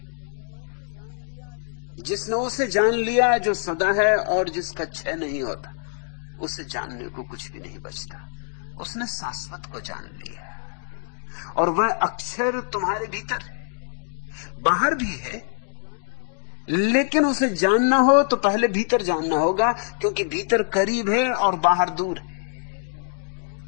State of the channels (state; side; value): silent; right; digital silence